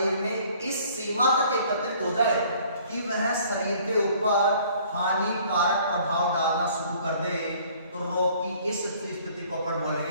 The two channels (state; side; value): inverted; both; correlation -0.56